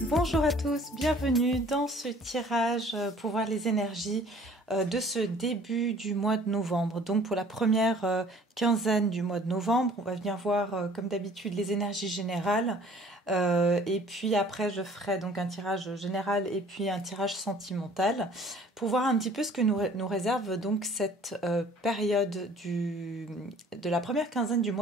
Bonjour à tous, bienvenue dans ce tirage pour voir les énergies de ce début du mois de novembre. Donc pour la première quinzaine du mois de novembre, on va venir voir comme d'habitude les énergies générales et puis après je ferai donc un tirage général et puis un tirage sentimental pour voir un petit peu ce que nous réserve donc cette période de la première quinzaine du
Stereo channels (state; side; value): normal; both; correlation 0.52